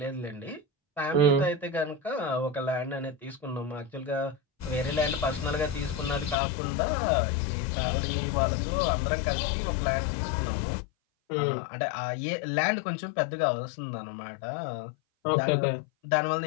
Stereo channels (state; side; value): drops out; right; at 6.4 s